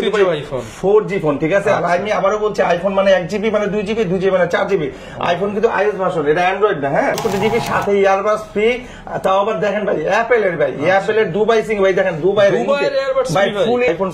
4G ফোন, ঠিক আছে। আর আমি আবারও বলছি, আইফোন মানে 1GB মানে 2GB, 2GB মানে 4GB। আইফোন কিন্তু iOS ভার্সন, এটা অ্যান্ড্রয়েড না। হ্যাঁ, 4GB সাথে ইয়ারবাডস ফ্রি। তাও আবার দেখেন ভাই অ্যাপেলের, ভাই অ্যাপেলের দুবাই সিং, ভাই দেখেন দুবাইয়ের এয়ারবাডস ভাই ফুল আইফোন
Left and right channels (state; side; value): identical; both; correlation 1.00